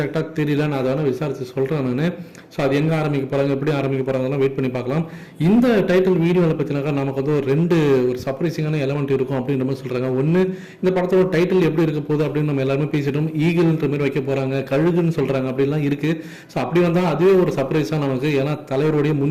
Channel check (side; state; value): both; identical; correlation 1.00